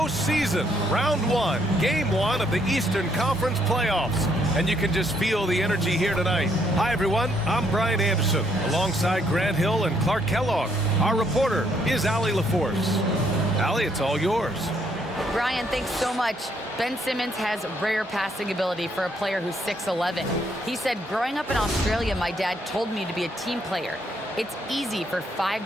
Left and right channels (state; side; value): normal; both; correlation 0.70